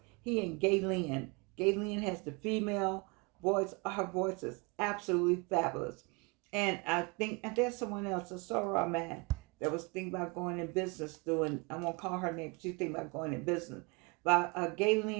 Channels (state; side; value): quieter; left; 29.1 dB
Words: He and Gayleen. Gayleen has the female voice. Her voice is absolutely fabulous. And I think, and there's someone else, a Sora man, that was thinking about going in business doing, I won't call her name, she's thinking about going in business. But